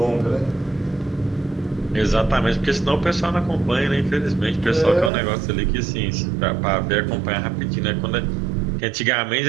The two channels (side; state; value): left; drops out; at 5.1 s